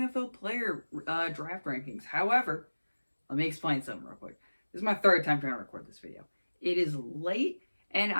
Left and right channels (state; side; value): inverted; both; correlation -1.00